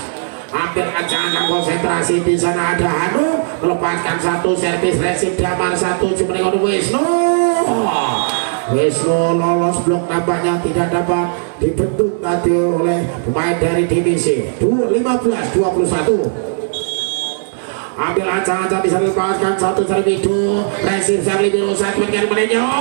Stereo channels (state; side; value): silent; left; 69 dB below the other